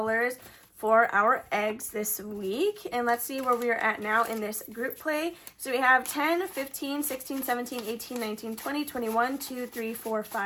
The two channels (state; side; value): identical; both; correlation 1.00